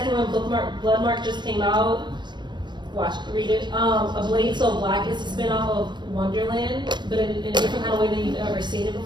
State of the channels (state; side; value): late; left; 0.22 ms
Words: one, Bloodmark just came out. Read it. A Blade So Black is a spin-off of Wonderland, but in a different kind of way than you've ever seen it